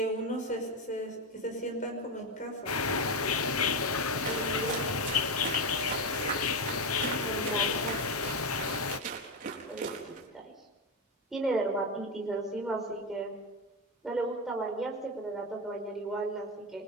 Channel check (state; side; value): normal; both; correlation 0.11